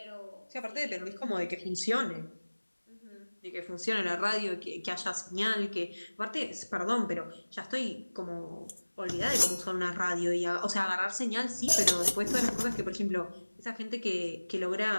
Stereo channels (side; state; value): both; inverted; correlation -1.00